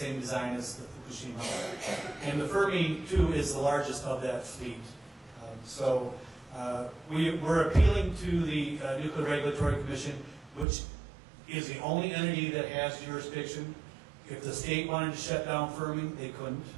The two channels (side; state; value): left; drops out; at 10.7 s